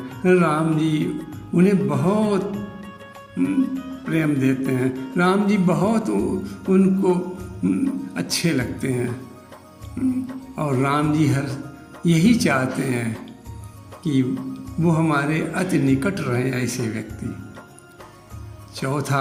राम जी उन्हें बहुत प्रेम देते हैं, राम जी बहुत उनको अच्छे लगते हैं और राम जी हर यही चाहते हैं कि वो हमारे अति निकट रहें ऐसे व्यक्ति। चौथा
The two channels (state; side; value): identical; both; correlation 1.00